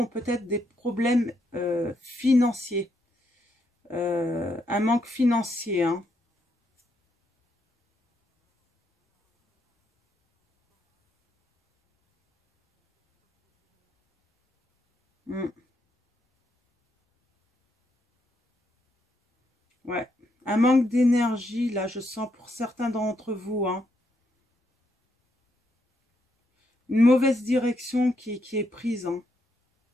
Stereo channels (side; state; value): both; normal; correlation 0.78